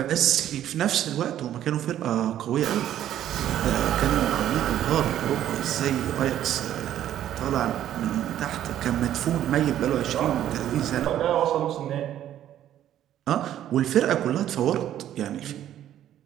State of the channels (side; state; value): left; quieter; 11.5 dB